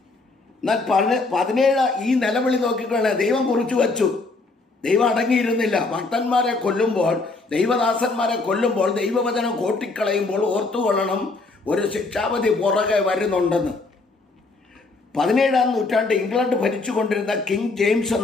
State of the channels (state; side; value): quieter; right; 3.5 dB